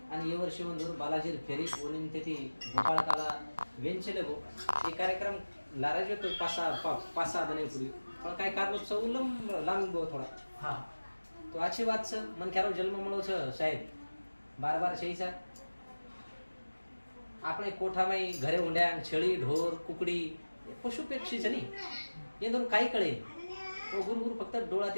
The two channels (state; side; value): inverted; both; correlation -1.00